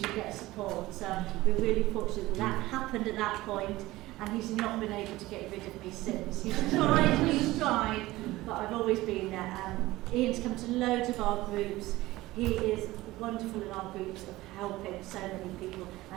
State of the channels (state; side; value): quieter; left; 18.2 dB